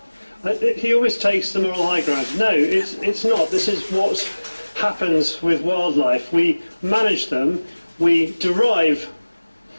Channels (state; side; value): inverted; both; correlation -1.00